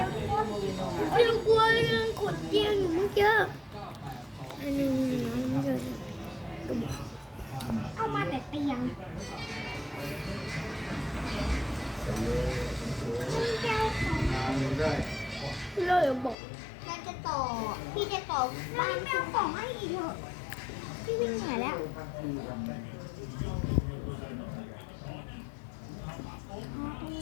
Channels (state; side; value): drops out; right; at 16.4 s